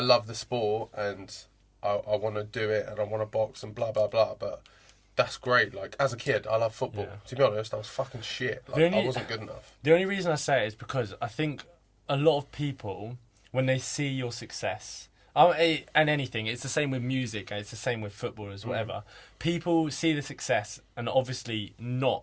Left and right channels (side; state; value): both; identical; correlation 1.00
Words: love the sport and I want to do it and I want to box and blah, blah, blah, but that's great. Like, as a kid, I love football. Yeah. To be honest, I was fucking shit. Like, I wasn't good enough. The only reason I say it is because I think a lot of people, when they see your success, and anything, it's the same with music, and it's the same with football as whatever. People see the success and obviously not